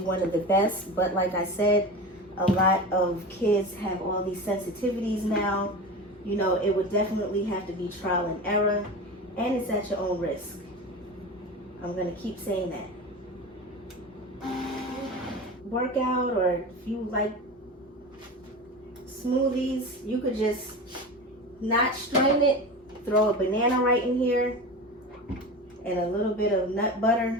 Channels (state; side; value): normal; both; correlation 0.29